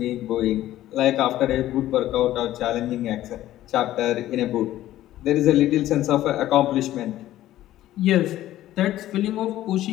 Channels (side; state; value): right; quieter; 14.0 dB